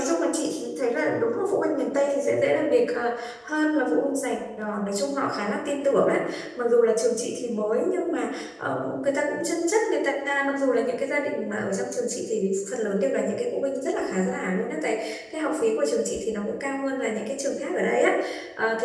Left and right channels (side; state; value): both; identical; correlation 1.00